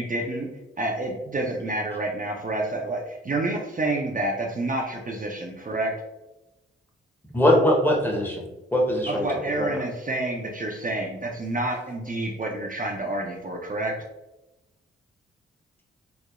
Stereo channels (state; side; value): normal; both; correlation 0.50